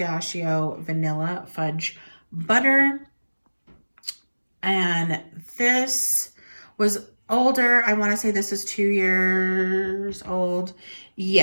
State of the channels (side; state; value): both; inverted; correlation -1.00